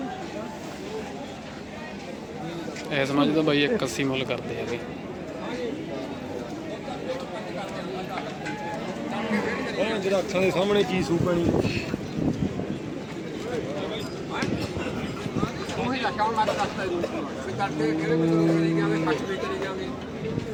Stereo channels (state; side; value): identical; both; correlation 1.00